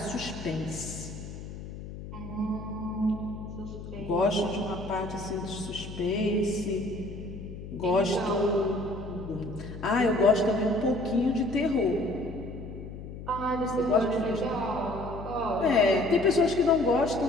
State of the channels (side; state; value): left; noise; hum, 11 dB below the sound